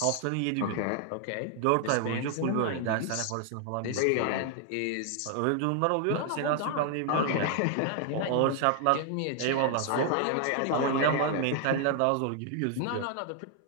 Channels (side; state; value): both; different; correlation 0.00